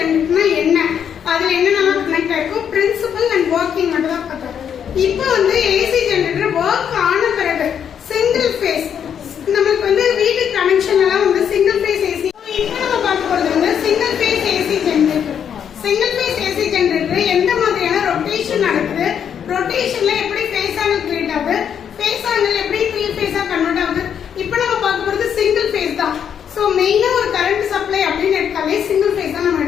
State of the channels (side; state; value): right; quieter; 8.3 dB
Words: என்ன, அதுல என்னென்னலாம் கனெக்ட் ஆயிருக்கும், பிரின்சிபல் அண்ட் ஒர்க்கிங் மட்டும் தான் பார்த்தோம். இப்போ வந்து ஏசி ஜெனரேட்டர் ஒர்க் ஆன பிறகு சிங்கிள் ஃபேஸ் நமக்கு வந்து வீட்டு கனெக்ஷன் எல்லாம் வந்து சிங்கிள் ஃபேஸ் ஏசி. இப்போ நம்ம பார்க்க போறது வந்து single phase AC generator. Single phase AC generator எந்த மாதிரியான ரொட்டேஷன் நடக்குது, ரொட்டேஷன்ல எப்படி ஃபேஸ் ஆங்கிள் கிரியேட் ஆகுது, ஃபேஸ் ஆங்கிள் எப்படி 3 ஃபேஸா கன்வெர்ட் ஆகுது. இப்போ நம்ம பார்க்க போறது சிங்கிள் ஃபேஸ் தான். சோ மெயினா ஒரு கரண்ட் சப்ளை அப்படின்னு எடுத்தாலே சிங்கிள் ஃபேஸ் தான் நம்ம